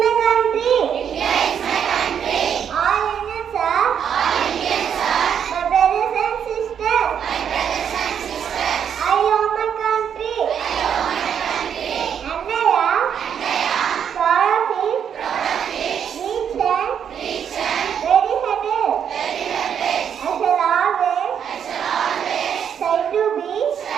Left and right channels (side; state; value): left; quieter; 8.2 dB